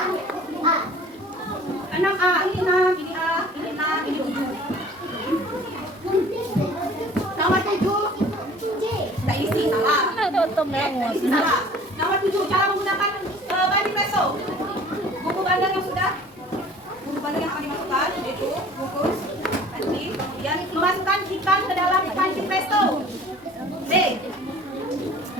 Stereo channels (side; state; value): both; normal; correlation 0.48